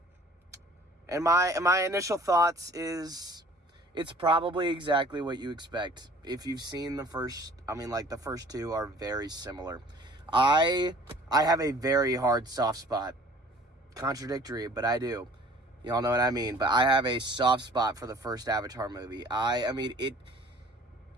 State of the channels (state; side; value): normal; both; correlation 0.51